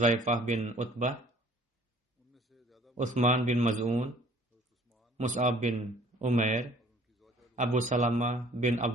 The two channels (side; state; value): both; normal; correlation 0.54